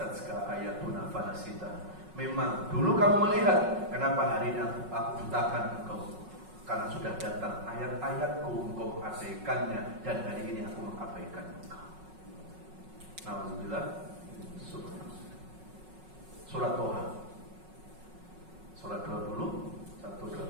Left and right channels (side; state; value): left; late; 5.4 ms